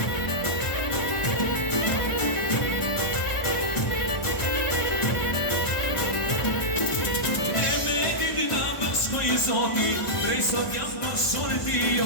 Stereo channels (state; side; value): late; right; 1.5 ms